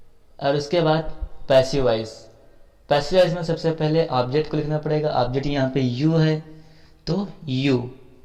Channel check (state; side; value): identical; both; correlation 1.00